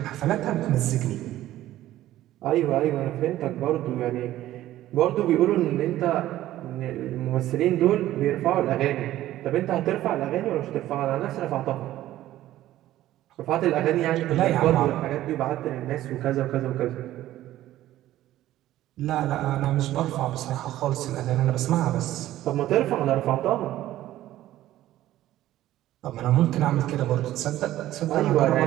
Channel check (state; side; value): quieter; left; 14.2 dB